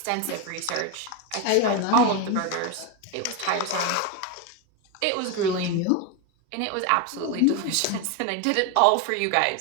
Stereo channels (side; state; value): both; different; correlation 0.02